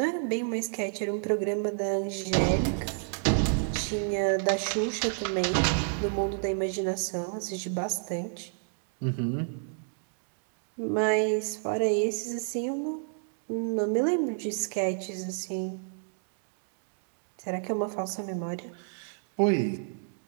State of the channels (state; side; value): silent; left; digital silence